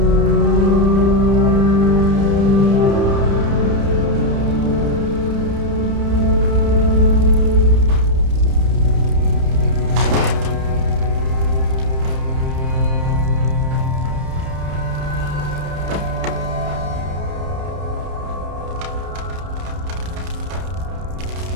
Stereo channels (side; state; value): left; late; 31 ms